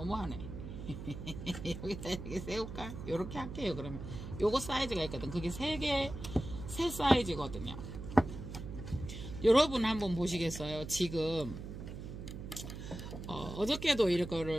여기다 이렇게 세울까? 요렇게 할게요, 그러면. 요거 사이즈가 있거든. 그게 세 사이즈거든요. 여러분 한번 보시겠어요? 지금 어저께도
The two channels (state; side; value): noise; right; hum, 9 dB below the sound